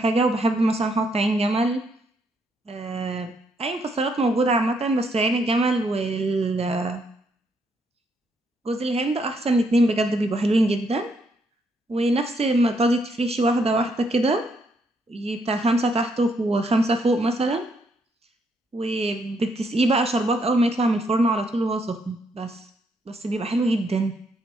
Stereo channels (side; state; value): both; normal; correlation 0.74